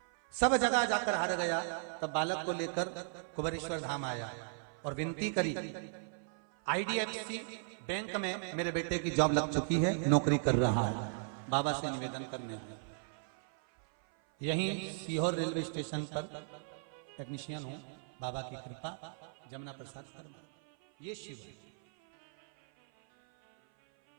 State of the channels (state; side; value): silent; left; 54 dB below the other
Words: सब जगह जाकर हार गया, तब बालक को लेकर कुबेरेश्वर धाम आया और विनती करी, IDFC बैंक में मेरे बेटे की जॉब लग चुकी है, नौकरी कर रहा है, बाबा से निवेदन करने। यहीं सीहोर रेलवे स्टेशन पर टेक्नीशियन हूं, बाबा की कृपा, जमुना प्रसाद, ये शिव है।